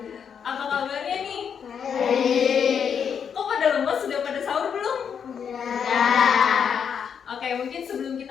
Apa kabarnya nih? Baik. Kok pada lemas? Sudah pada sahur belum? Ya. Oke, mungkin sebelum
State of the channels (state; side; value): quieter; right; 7.4 dB